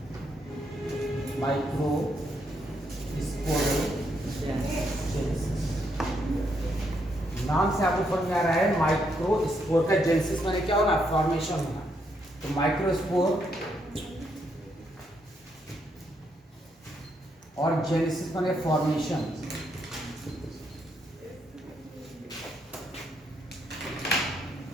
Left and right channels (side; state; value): both; normal; correlation 0.76